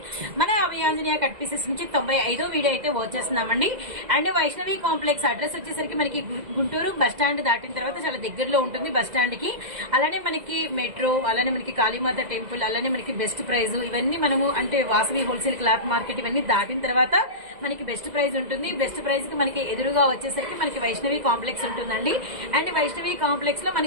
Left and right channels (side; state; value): left; late; 2.0 ms